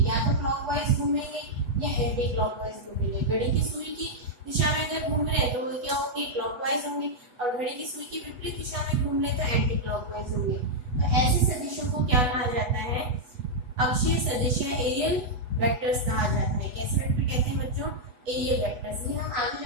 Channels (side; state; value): left; late; 8.1 ms